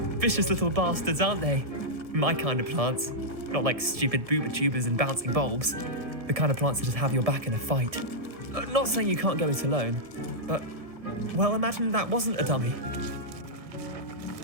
Vicious little bastards, aren't they? My kind of plants. Not like stupid booba tubers and bouncing bulbs. The kind of plants that just have your back in a fight. Not saying you can't go it alone, but, well, imagine that wasn't a dummy.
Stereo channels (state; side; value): late; left; 1.7 ms